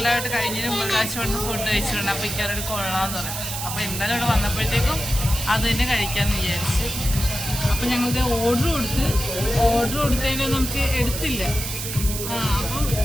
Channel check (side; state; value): right; noise; hiss, 5 dB below the sound